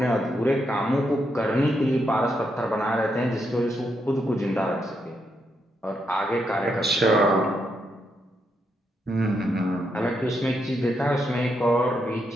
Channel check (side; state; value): both; normal; correlation 0.80